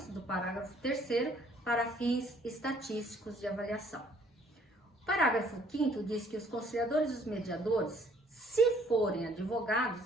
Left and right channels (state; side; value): normal; both; correlation 0.61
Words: do parágrafo 3º para fins estatísticos de avaliação. O parágrafo 5º diz que os conciliadores e os mediadores, se forem